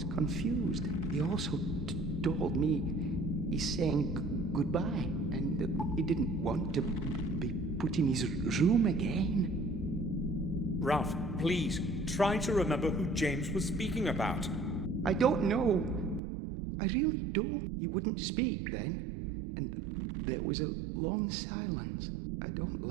confused. He also told me he's saying goodbye and that he didn't want to be put in his room again. Ralph, please, try to remember who James was speaking about. I don't know. I really don't. He wouldn't speak then, and there was a long silence. I don't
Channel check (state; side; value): drops out; left; at 16.2 s